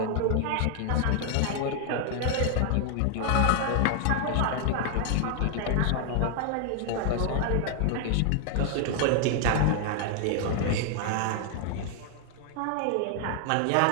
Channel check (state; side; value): different; both; correlation 0.00